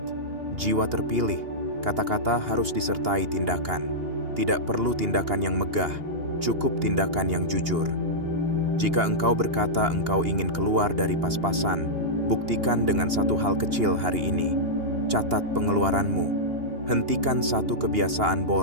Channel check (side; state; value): left; late; 2.8 ms